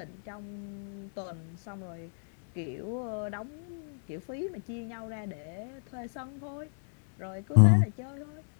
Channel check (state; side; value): silent; right; 56 dB below the other